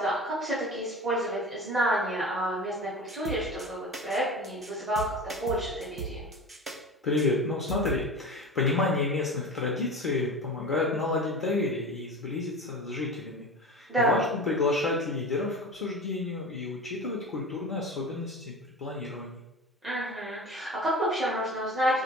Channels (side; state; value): both; normal; correlation 0.32